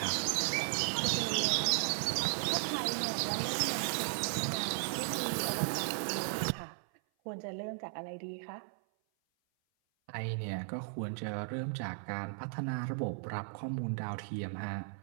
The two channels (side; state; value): left; silent; 54 dB below the other